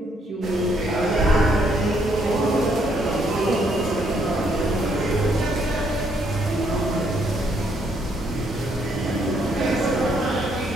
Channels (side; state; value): both; normal; correlation 0.71